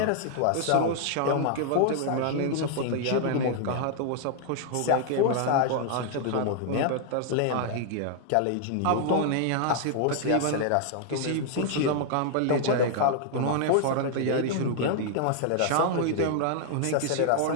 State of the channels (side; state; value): both; different; correlation 0.00